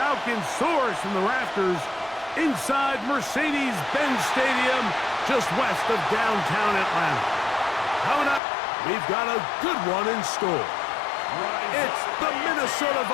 soars from the rafters inside Mercedes-Benz Stadium, just west of downtown Atlanta. Coming up, we've got a good one in store. It's the Minnesota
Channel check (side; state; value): right; drops out; at 8.4 s